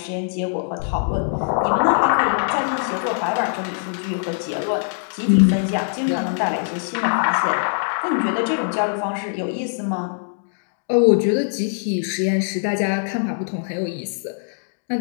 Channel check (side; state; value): right; silent; digital silence